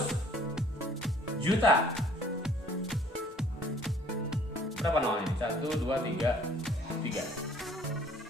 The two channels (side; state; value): both; normal; correlation 0.56